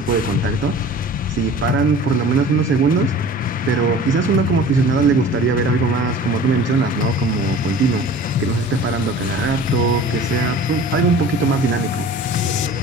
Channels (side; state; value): both; normal; correlation 0.42